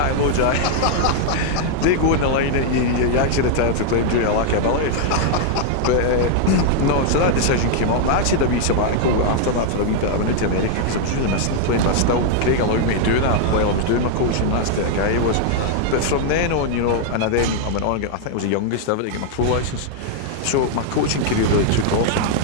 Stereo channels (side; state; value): both; different; correlation -0.01